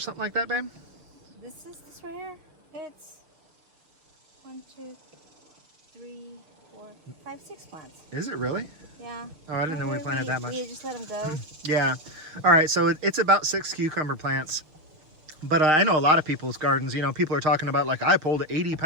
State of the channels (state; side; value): late; left; 6.4 ms